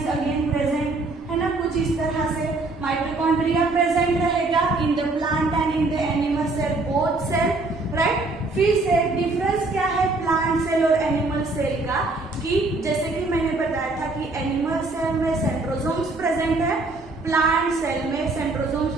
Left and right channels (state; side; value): quieter; left; 3.3 dB